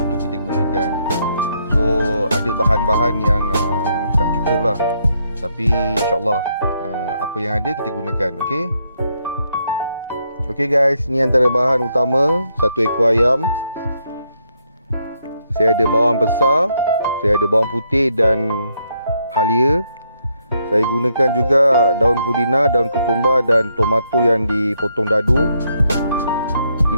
tu kita gunakan. So ada bahan-bahan yang tak cukup lah, tapi insyaAllah apa yang ada kita gunakan. Okay guys, ni antara bahan utama. 1 ekor ayam. Saya ada bawang besar, saya ada bawang putih dan halia. Saya gunakan juga daun pudina, daun ketumbar dan tomato yang dipotong dadu.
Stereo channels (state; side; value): inverted; both; correlation -0.75